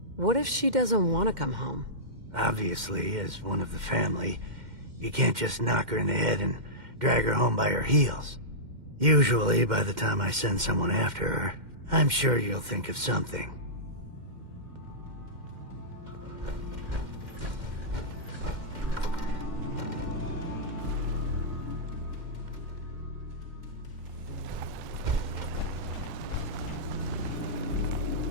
What if she doesn't want to come home? Obviously, as one of the family, you can't just knock her in the head and drag her home by her heels. Usually, by the time I send someone after her, I'm sure you'll think of something.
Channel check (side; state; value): left; late; 2.1 ms